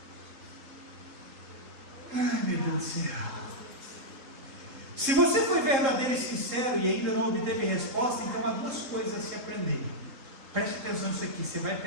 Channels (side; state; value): left; late; 3.7 ms